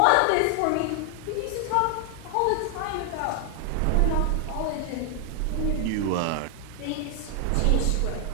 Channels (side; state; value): both; different; correlation 0.00